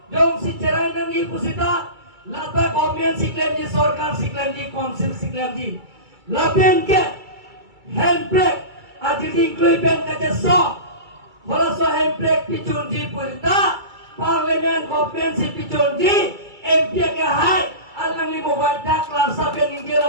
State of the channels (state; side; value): late; left; 2.3 ms